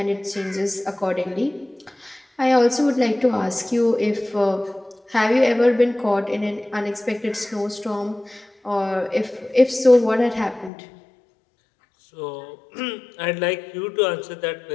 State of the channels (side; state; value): right; drops out; at 10.7 s